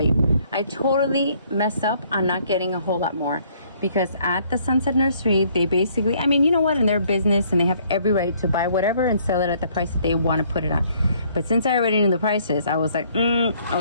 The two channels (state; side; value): inverted; both; correlation -0.63